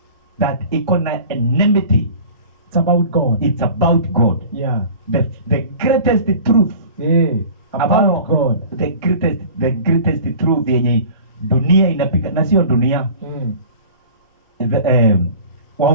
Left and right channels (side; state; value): both; inverted; correlation -0.42